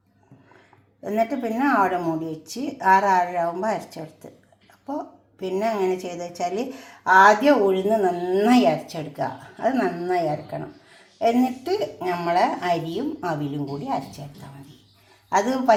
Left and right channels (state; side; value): identical; both; correlation 1.00